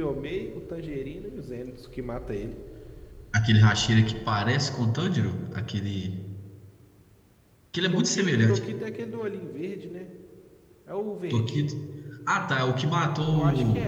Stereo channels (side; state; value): both; identical; correlation 1.00